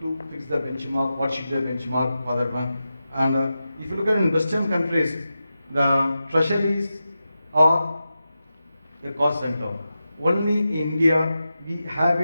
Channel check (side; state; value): both; inverted; correlation -0.91